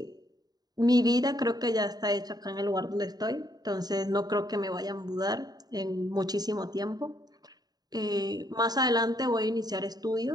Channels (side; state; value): left; late; 0.19 ms